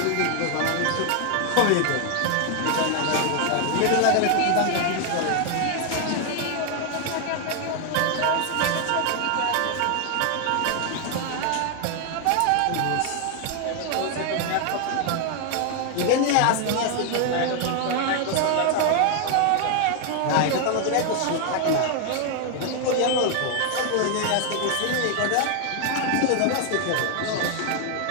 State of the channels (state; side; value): different; both; correlation 0.00